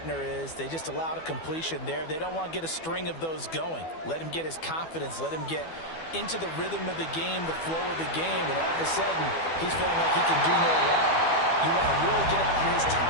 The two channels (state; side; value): late; right; 12 ms